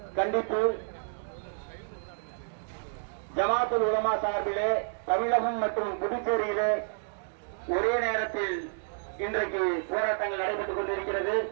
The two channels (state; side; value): silent; left; digital silence